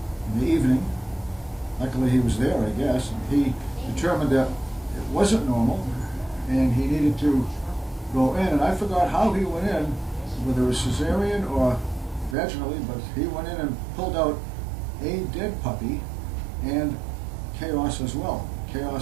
in the evening. Luckily he was there, I guess, and he determined that it wasn't normal and he needed to go in. And I forgot how he went in, whether it was cesarean or vaginally, but he went in and pulled out a dead puppy and Chaos as well.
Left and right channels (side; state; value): left; drops out; at 12.4 s